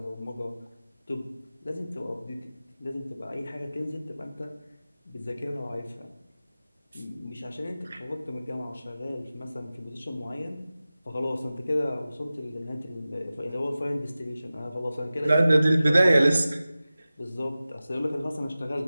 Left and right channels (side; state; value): both; inverted; correlation -0.96